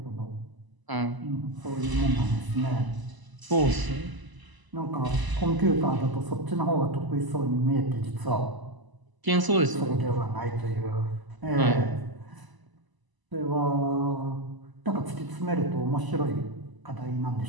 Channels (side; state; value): left; late; 1.0 ms